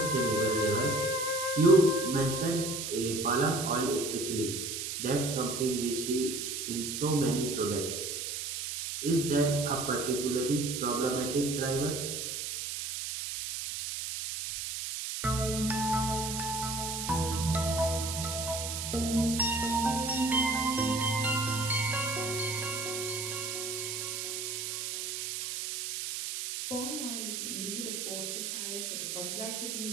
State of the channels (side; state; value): right; noise; hiss, 4 dB below the sound